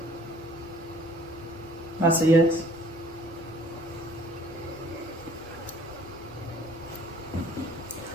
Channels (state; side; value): normal; both; correlation 0.55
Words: That's a yes.